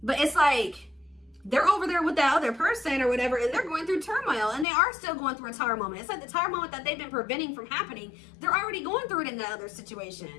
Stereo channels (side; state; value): right; drops out; at 4.7 s